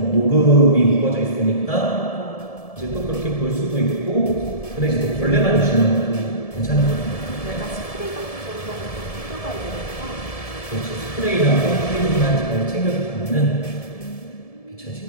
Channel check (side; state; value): right; late; 1.7 ms